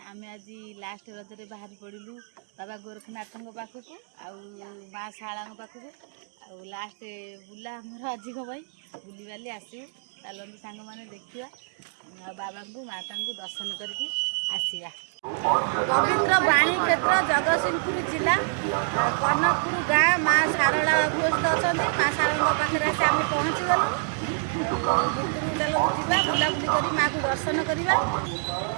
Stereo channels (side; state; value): left; silent; 60 dB below the other